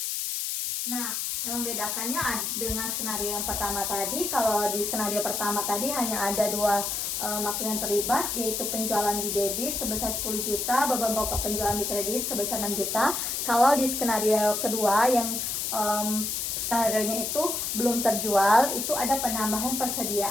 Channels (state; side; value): noise; left; hiss, 1 dB below the sound